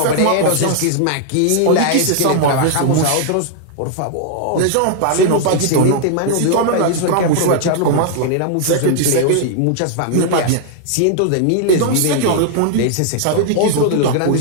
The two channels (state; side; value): different; both; correlation 0.00